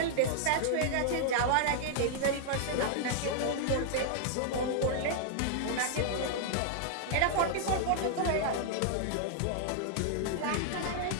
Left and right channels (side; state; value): both; different; correlation -0.01